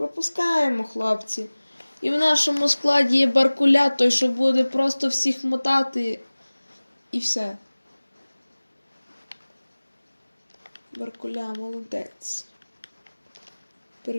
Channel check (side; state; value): both; inverted; correlation -1.00